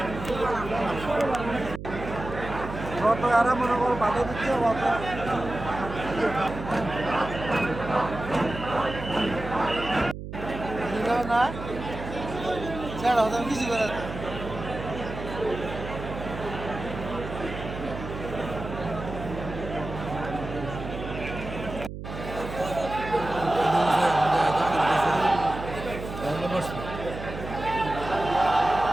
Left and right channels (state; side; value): noise; right; hum, 9 dB below the sound